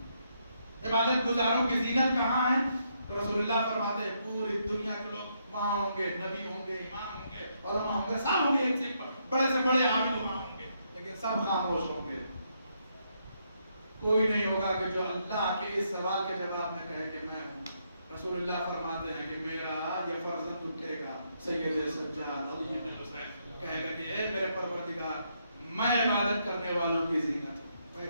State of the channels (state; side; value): inverted; both; correlation -0.76